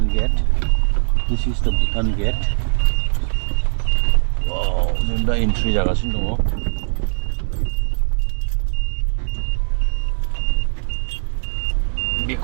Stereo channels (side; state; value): left; silent; digital silence